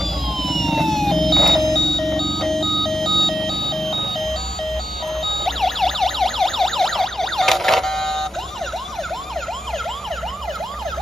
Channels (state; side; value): normal; both; correlation 0.85